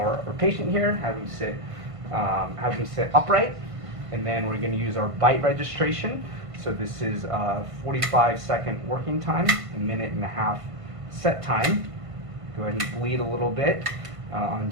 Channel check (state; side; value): late; left; 1.5 ms